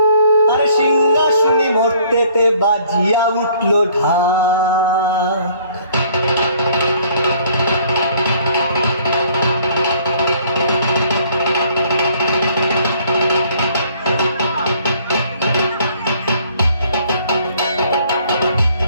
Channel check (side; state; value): both; inverted; correlation -0.59